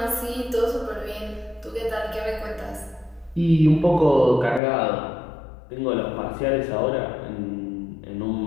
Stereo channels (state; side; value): drops out; right; at 4.6 s